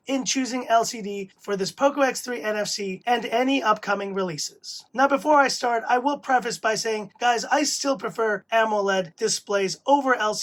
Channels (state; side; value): identical; both; correlation 1.00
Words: in choosing LCD for this POCO X3 NFC and any upcoming releases. Now before I start, I will preface by saying, guys, I still prefer AMOLED displays over